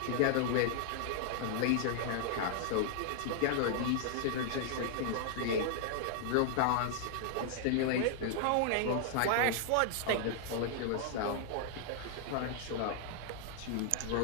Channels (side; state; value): both; different; correlation -0.01